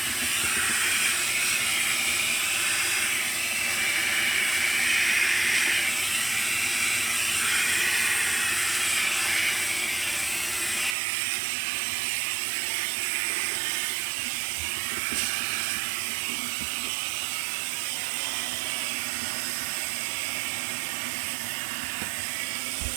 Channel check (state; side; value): drops out; left; at 11.0 s